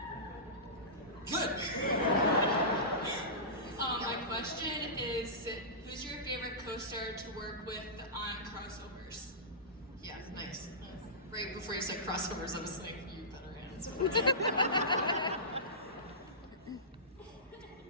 Good. My question is, who's your favorite co-star to work with on crossovers? Yeah, nice. Right before you said crossovers, I was like, you better answer.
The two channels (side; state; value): both; normal; correlation -0.20